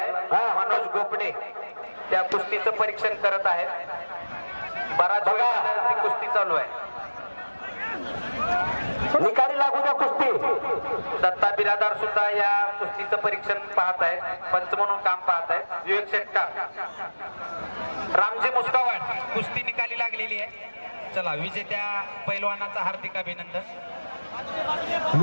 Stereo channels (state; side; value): inverted; both; correlation -1.00